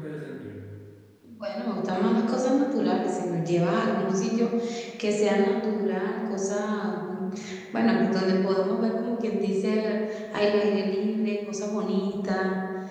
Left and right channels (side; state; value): both; identical; correlation 1.00